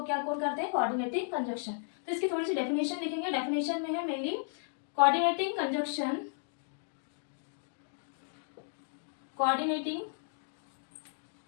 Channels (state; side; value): silent; right; digital silence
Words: क्या कौन करते हैं, कोऑर्डिनेटिंग कंजक्शन। तो इसकी थोड़ी सी डेफिनेशन लिखेंगे। डेफिनेशन में है mainly coordinating conjunction